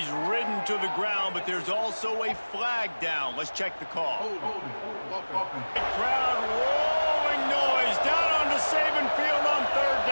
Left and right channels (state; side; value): inverted; both; correlation -1.00